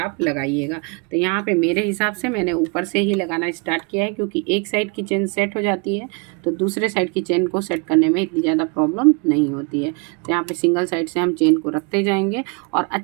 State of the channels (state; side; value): quieter; left; 33.3 dB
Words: लगाइएगा। तो यहाँ पे मेरे हिसाब से मैंने ऊपर से ही लगाना स्टार्ट किया है, क्योंकि एक साइड की चेन सेट हो जाती है तो दूसरे साइड की चेन को सेट करने में इतनी ज़्यादा प्रॉब्लम नहीं होती है। तो यहाँ पे सिंगल साइड से हम चेन को रखते जाएंगे और